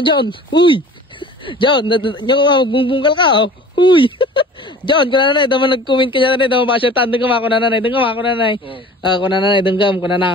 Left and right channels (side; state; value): both; normal; correlation 0.44